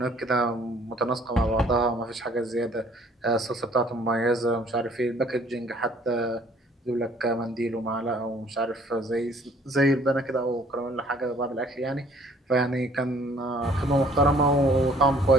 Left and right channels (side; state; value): both; normal; correlation 0.58